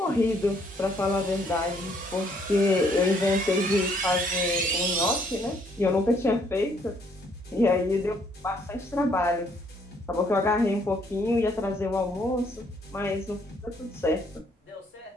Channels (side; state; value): both; normal; correlation 0.67